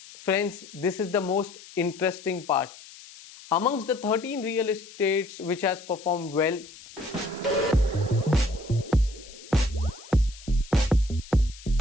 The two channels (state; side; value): noise; left; hiss, 19 dB below the sound